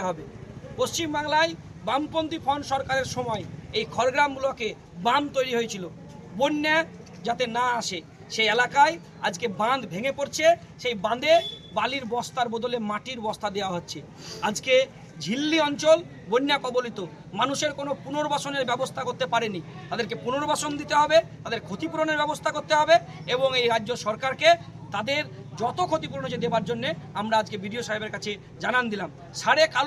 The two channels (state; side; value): identical; both; correlation 1.00